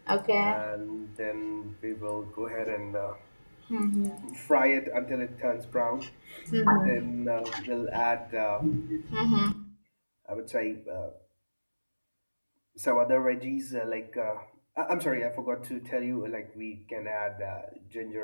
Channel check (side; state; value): both; inverted; correlation -1.00